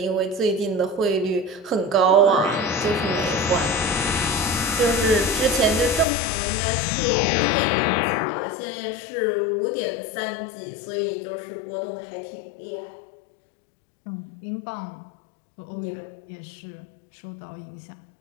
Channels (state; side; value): drops out; right; at 6.1 s